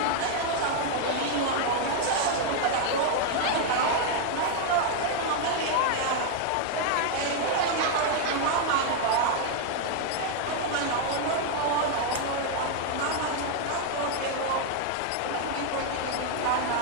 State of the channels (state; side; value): different; both; correlation 0.00